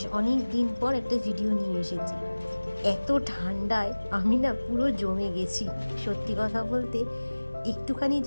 অনেক দিন পর একটা ভিডিও নিয়ে এসেছি। এত ঠান্ডায় আমি না পুরো জমে গেছি। সত্যি কথা বলতে একটুখানি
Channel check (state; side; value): inverted; both; correlation -1.00